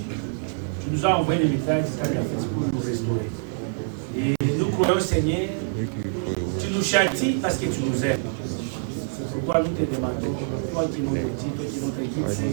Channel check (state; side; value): silent; left; 58 dB below the other